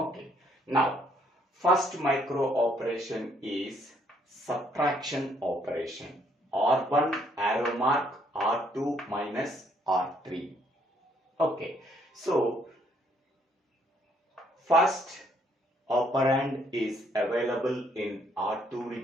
Now, first micro operation is subtraction operation. R1 arrow mark R2 minus R3. Okay. So first operand is available in R2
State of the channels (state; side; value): normal; both; correlation 0.68